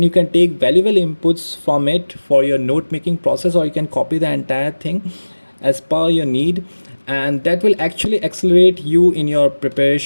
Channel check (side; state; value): both; inverted; correlation -1.00